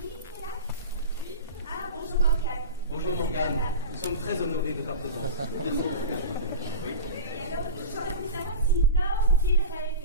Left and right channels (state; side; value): inverted; both; correlation -0.30